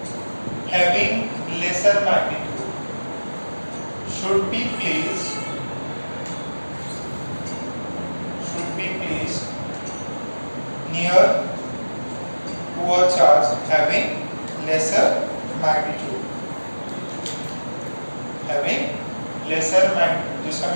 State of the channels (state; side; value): inverted; both; correlation -1.00